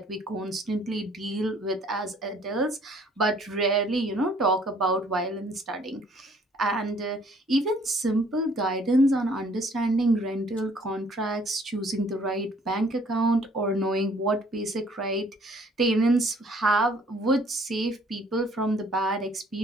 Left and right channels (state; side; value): normal; both; correlation 0.59